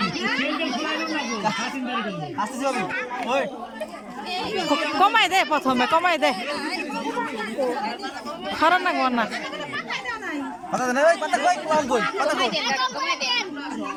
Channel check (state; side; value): identical; both; correlation 1.00